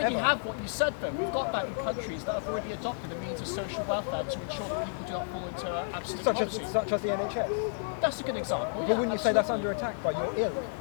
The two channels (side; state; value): right; silent; digital silence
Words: forever. have what you said then. We've got that in countries that have already adopted a means of social welfare to ensure that people do not fall into absolute poverty. Such as the NHS. That's a good example. But wouldn't you say that's under attack by your ilk